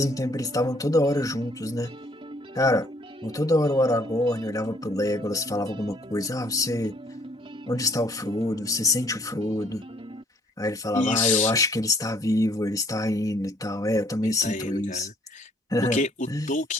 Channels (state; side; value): normal; both; correlation 0.63